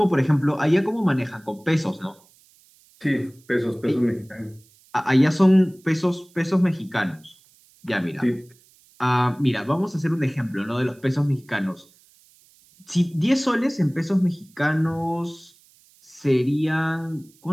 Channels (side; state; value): right; noise; hiss, 30 dB below the sound